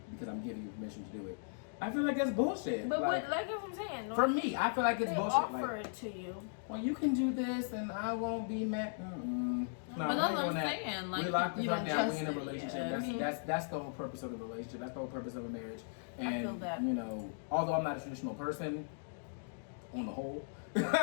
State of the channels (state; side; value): silent; right; digital silence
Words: because I'm giving you permission to do it. I feel like that's bullshit. But like, like I'm saying, for me, I feel like it's they bullshit. offer Like, it to you. well, you can do this and I won't be mad. No, But we that's ain't what doing I'm that. saying, like, we locked the you fuck don't down. We in a trust it, relationship. yeah. That's the whole purpose of the relationship. That's the whole purpose of a marriage. And I feel that. although I'm not a traditional person, on the whole,